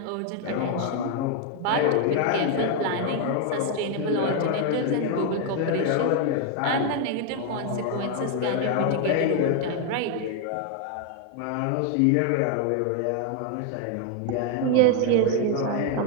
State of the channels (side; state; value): both; different; correlation 0.01